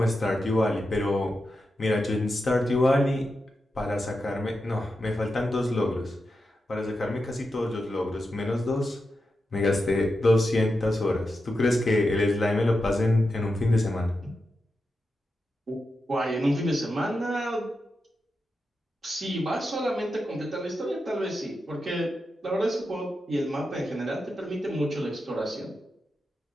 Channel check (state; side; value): normal; both; correlation 0.89